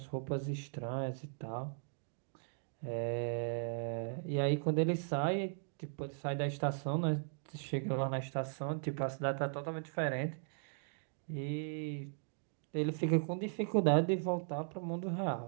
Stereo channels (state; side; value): silent; left; digital silence